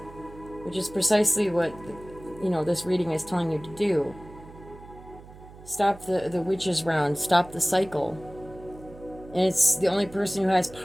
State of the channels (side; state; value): right; noise; hum, 19 dB below the sound